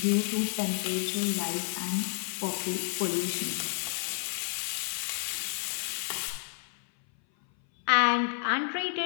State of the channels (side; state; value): right; silent; 58 dB below the other